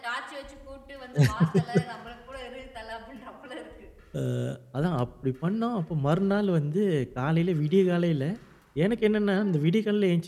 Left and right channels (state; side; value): identical; both; correlation 1.00